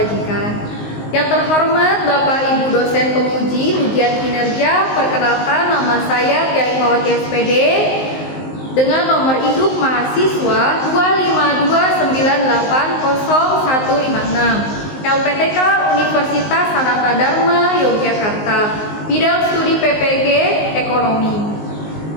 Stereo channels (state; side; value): late; right; 19 ms